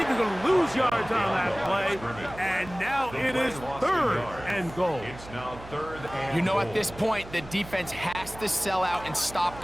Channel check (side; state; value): right; noise; hum, 16 dB below the sound